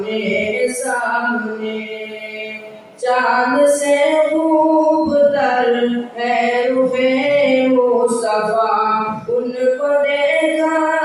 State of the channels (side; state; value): both; identical; correlation 1.00